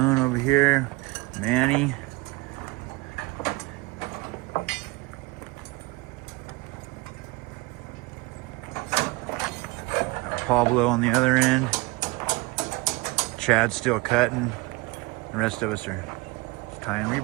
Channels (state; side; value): quieter; left; 24.1 dB